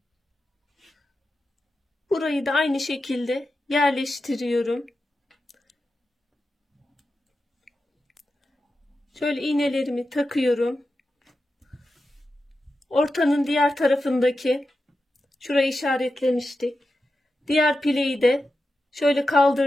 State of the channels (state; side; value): normal; both; correlation 0.91